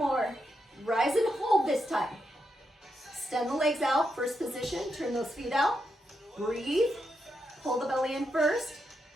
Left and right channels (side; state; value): both; normal; correlation 0.83